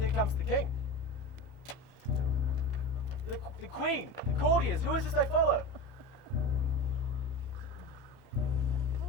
comes the king. The queen, the courtiers, who is this they follow?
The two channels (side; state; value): left; late; 31 ms